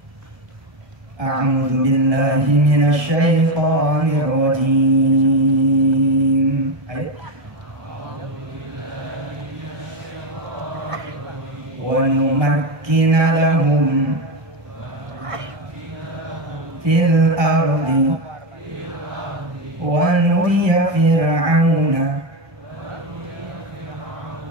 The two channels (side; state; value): left; late; 1.7 ms